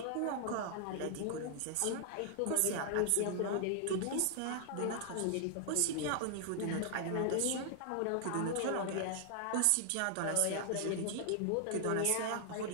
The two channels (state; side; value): different; both; correlation 0.00